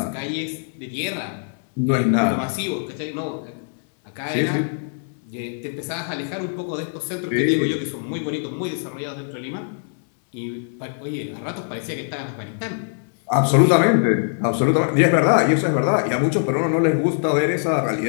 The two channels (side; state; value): right; silent; digital silence